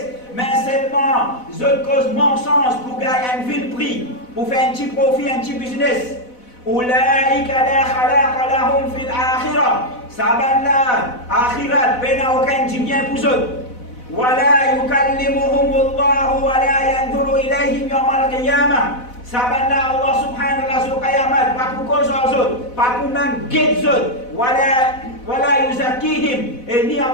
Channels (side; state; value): right; late; 4.0 ms